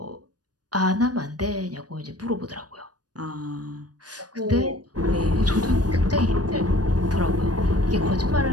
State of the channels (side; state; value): left; late; 0.69 ms